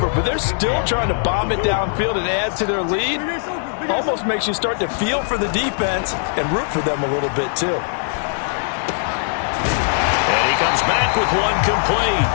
but they're still trying to bomb it downfield and add to their lead. Almost makes you start to feel for the defense and root for them a little bit, too. And he comes back with one complete.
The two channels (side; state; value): right; silent; digital silence